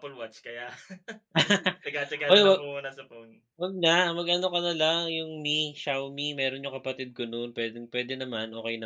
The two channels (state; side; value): identical; both; correlation 1.00